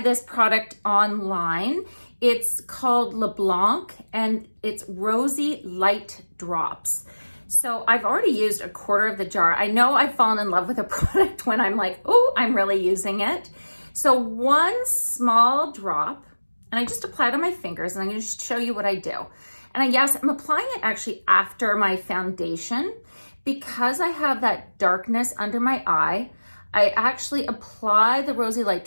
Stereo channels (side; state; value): both; inverted; correlation -1.00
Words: this product online. It's called Blanc, and it's Rosy Light Drops. So I've already used a quarter of the jar. I know I've fallen in love with a product when I'm like, oh, I'm really using it. So one small drop, and I just apply it on my fingers, and I'm gonna show you what I do. And yes, I'm applying it actually after my foundation because I have that darkness under my eye. I actually apply the Rosy Light